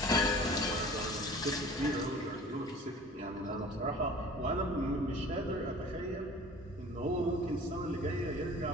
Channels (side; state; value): both; normal; correlation 0.44